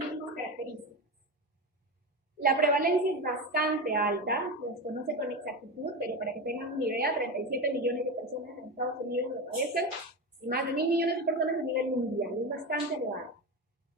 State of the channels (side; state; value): both; normal; correlation 0.20